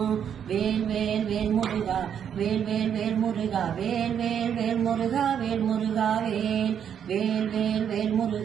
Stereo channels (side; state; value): left; quieter; 8.5 dB